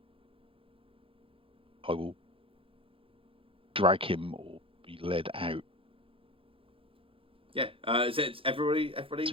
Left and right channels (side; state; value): left; late; 0.26 ms